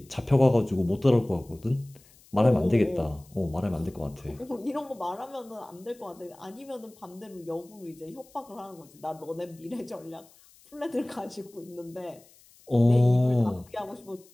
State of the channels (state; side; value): noise; left; hiss, 27 dB below the sound